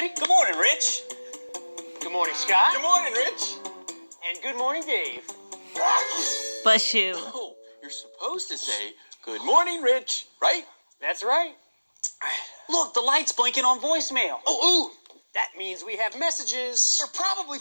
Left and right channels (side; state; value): both; inverted; correlation -1.00